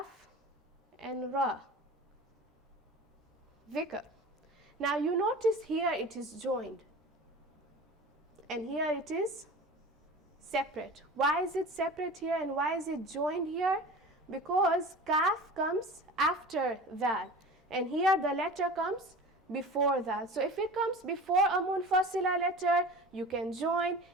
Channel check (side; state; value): both; normal; correlation 0.37